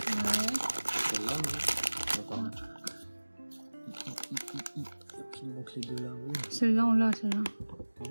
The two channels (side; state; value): both; inverted; correlation -1.00